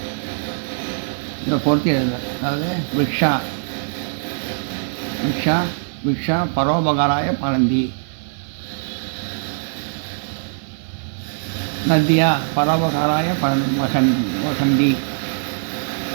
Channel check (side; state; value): left; silent; digital silence